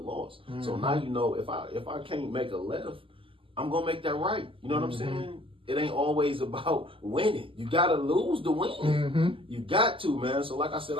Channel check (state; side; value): late; left; 0.25 ms